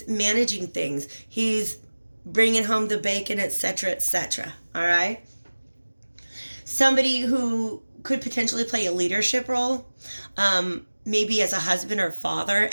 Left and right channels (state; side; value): inverted; both; correlation -1.00